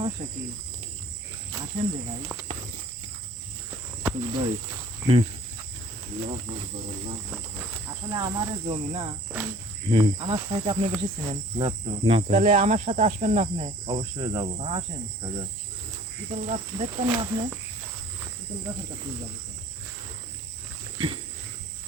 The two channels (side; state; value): both; normal; correlation 0.51